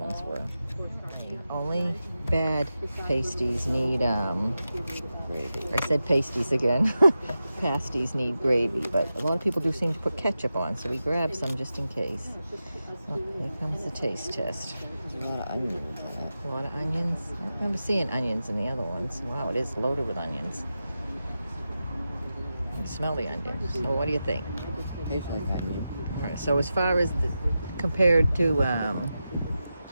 were. Only bad pasties need Gravy. I said pasties again. Pasties need gravy, but a lot of people do seem to put ketchup on, so we grabbed some just in case. Oh, here comes the taste test. There's a lot of onions in it. A lot of onions. I don't remember seeing onions in the other ones. Wow, it is loaded with onions. You can smell the onions. So what do you think? Tastes like onion. All right, so as far as compared to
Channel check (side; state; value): both; inverted; correlation -0.91